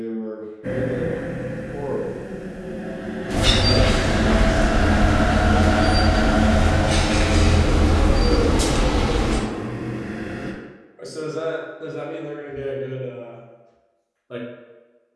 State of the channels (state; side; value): identical; both; correlation 1.00